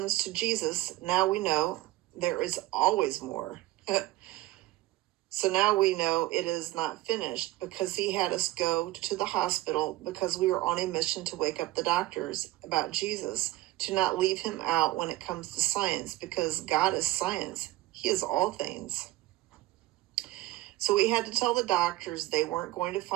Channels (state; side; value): quieter; left; 17.5 dB